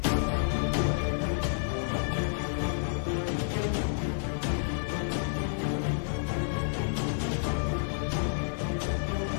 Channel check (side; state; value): right; silent; digital silence